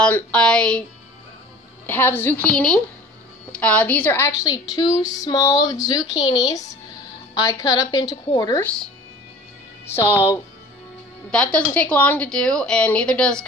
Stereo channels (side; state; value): both; normal; correlation 0.44